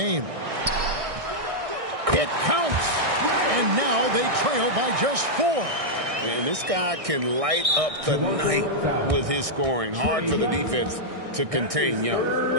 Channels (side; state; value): left; late; 1.6 ms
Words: It counts. And now they trail by just 4. And this guy can light up the night with his scoring. Hard for the defense to contain Young.